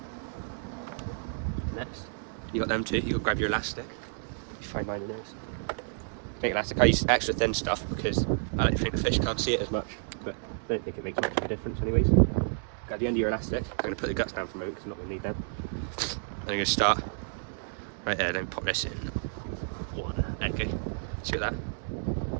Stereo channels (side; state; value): left; silent; digital silence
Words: Next, you got them too. You got to grab your elastic. You find mine in there. Big elastic. I use extra thin stuff because I like to think the fish can't see it as much, but I don't think it makes much of a difference anyways. At the end of your elastic, I'm going to put the guts down for a moment because I'm not going to need them. I'm going to start right there, then pop this in. One. Okay, see that?